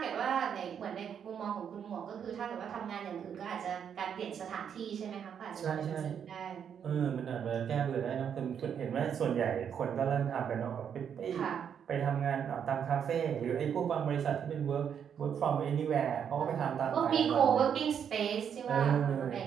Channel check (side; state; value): left; quieter; 8.0 dB